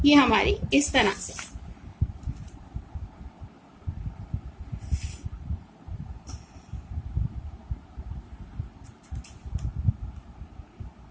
ये हमारी इस तरह से।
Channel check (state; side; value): identical; both; correlation 1.00